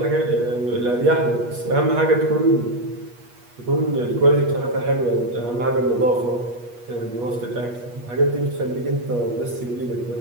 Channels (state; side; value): late; left; 8.3 ms